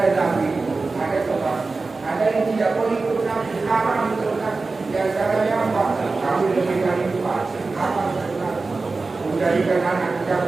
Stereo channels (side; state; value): left; quieter; 3.8 dB